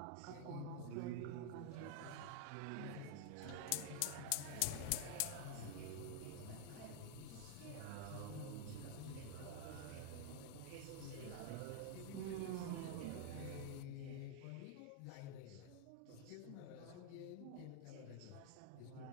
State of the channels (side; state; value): both; different; correlation 0.00